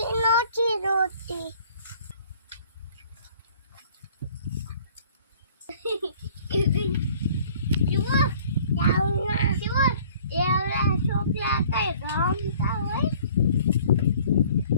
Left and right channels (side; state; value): both; inverted; correlation -0.53